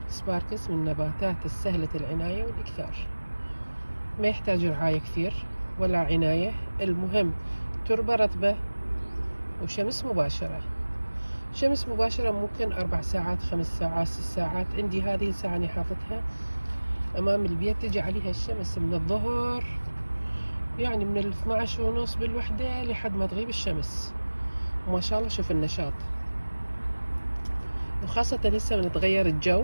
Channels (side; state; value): both; inverted; correlation -1.00